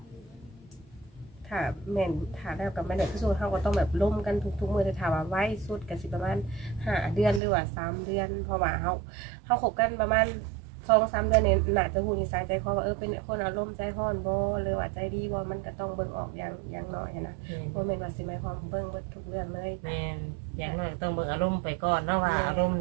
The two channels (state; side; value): drops out; left; at 7.4 s